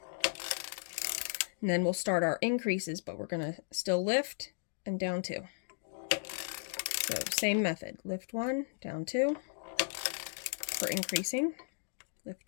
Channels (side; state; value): right; silent; digital silence